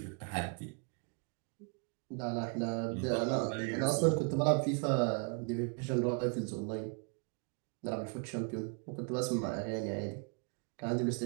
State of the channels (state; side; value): quieter; left; 35.8 dB